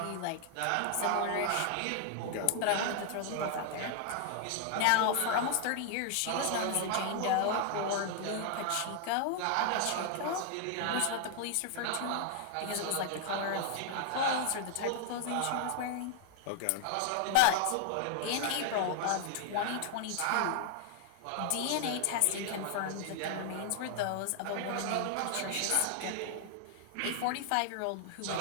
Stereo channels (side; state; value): both; different; correlation 0.00